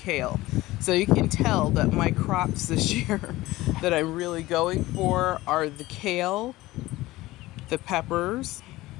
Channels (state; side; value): quieter; right; 18.1 dB